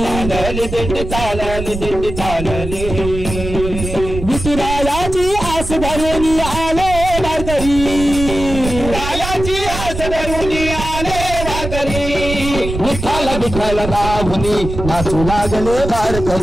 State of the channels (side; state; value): right; noise; rumble, 7 dB below the sound